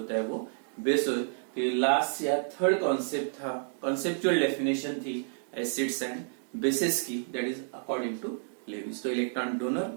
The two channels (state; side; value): silent; left; digital silence